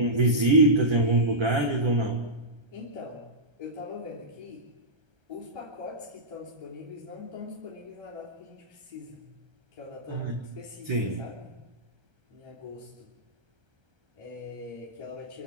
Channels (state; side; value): late; left; 1.3 ms